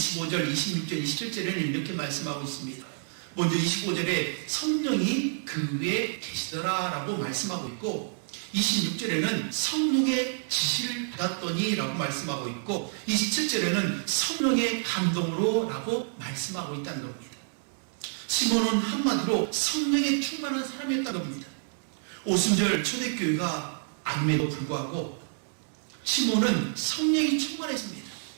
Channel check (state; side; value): silent; left; digital silence